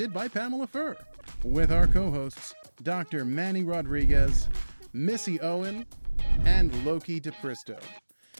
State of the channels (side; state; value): both; inverted; correlation -1.00